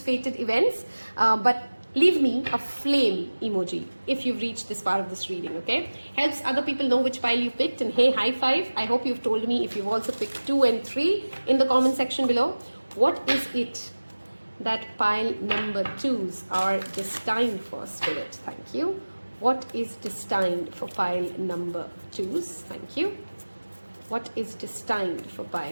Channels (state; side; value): inverted; both; correlation -1.00